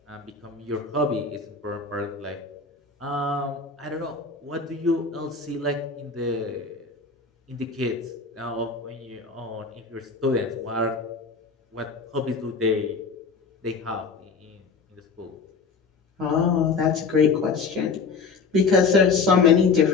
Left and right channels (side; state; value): right; quieter; 4.8 dB